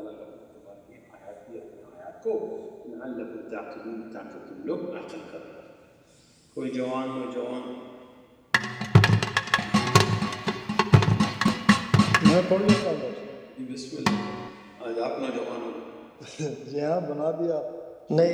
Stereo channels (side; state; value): both; identical; correlation 1.00